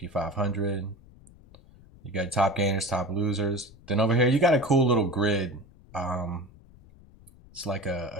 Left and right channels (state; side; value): noise; left; rumble, 24 dB below the sound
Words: 500. You got top gainers, top losers. Then over here, you got a cool little grid. It's like